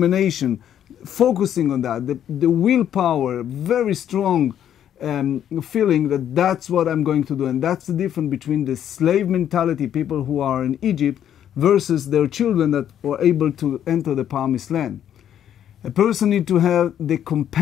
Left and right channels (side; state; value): right; quieter; 10.1 dB